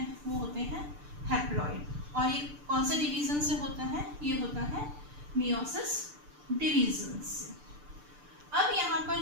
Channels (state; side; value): late; left; 6.8 ms